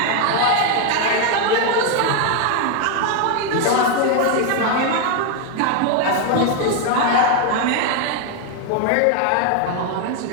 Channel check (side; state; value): both; different; correlation 0.01